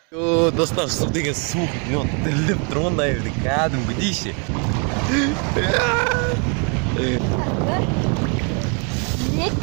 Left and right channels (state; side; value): quieter; left; 37.0 dB